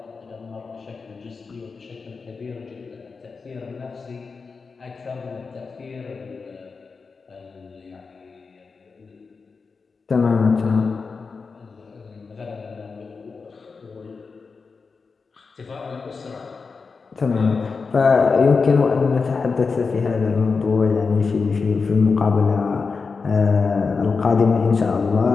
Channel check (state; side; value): quieter; right; 4.8 dB